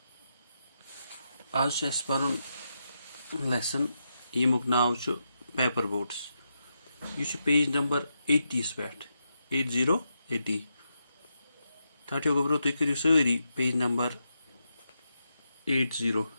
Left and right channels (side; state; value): both; inverted; correlation -0.84